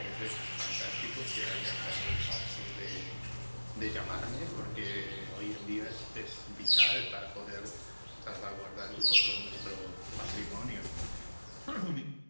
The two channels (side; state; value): both; inverted; correlation -1.00